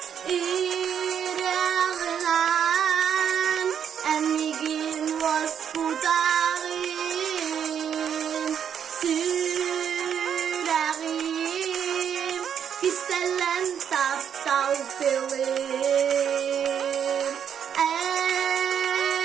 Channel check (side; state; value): left; quieter; 8.3 dB